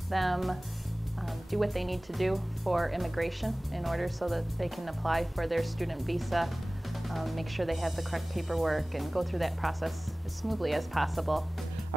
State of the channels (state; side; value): normal; both; correlation 0.97